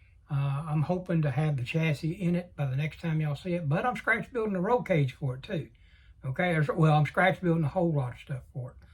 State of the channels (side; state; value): both; identical; correlation 1.00